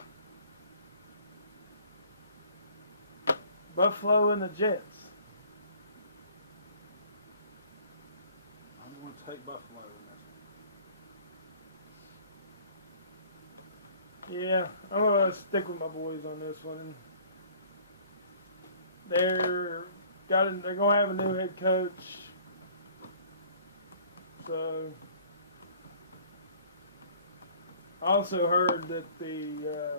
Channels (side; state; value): both; inverted; correlation -0.53